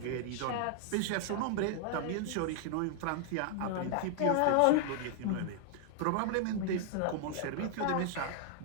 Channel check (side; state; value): both; different; correlation -0.01